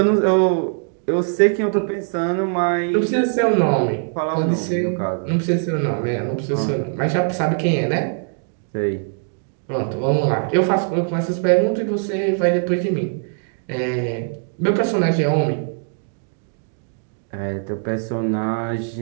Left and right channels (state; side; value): silent; left; 64 dB below the other